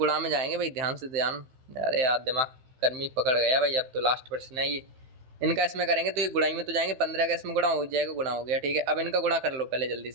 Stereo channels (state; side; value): late; left; 15 ms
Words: में जाएंगे भाई, ध्यान से ध्यान। अरे यार दिमाग गर्मी पकड़ गया भाई। अब तो लास्ट प्रश्न है ये, इनका इसमें करेंगे तो ये गुणाई में तो जाएंगे, 15 का इसमें गुणा हो जाएगा, गुणा हो गया। ठीक है, अब इनका गुणा कर लो पहले जल्दी